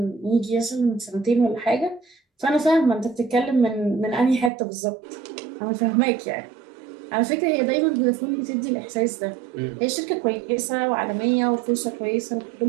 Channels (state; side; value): drops out; left; at 4.5 s